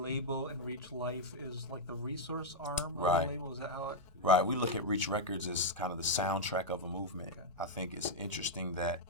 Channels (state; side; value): normal; both; correlation -0.03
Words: and Reach Life is like the resource arm of Right. the label? Is that how it? Right. We look at Reach Records as kind of the soundtrack of a movement. Okay. I think it's interesting that,